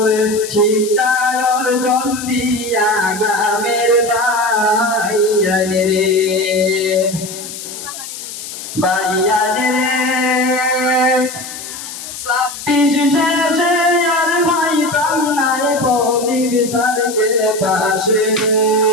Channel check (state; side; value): noise; left; hiss, 10 dB below the sound